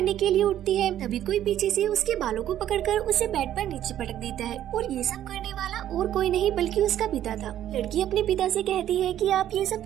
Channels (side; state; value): left; quieter; 11.6 dB